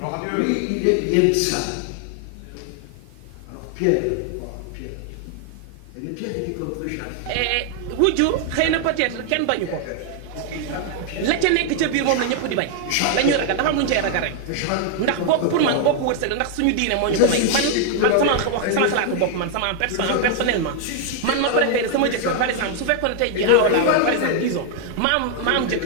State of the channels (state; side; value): different; both; correlation 0.00